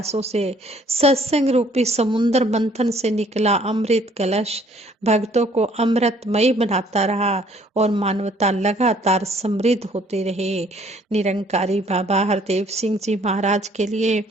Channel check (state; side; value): normal; both; correlation 0.60